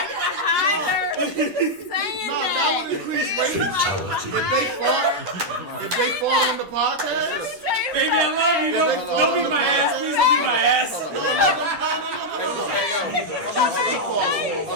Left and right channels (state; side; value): late; left; 10 ms